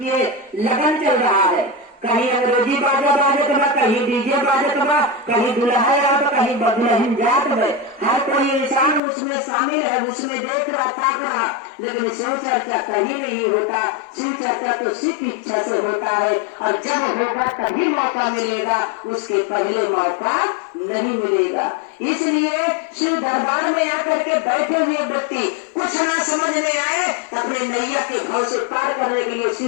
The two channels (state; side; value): drops out; right; at 9.0 s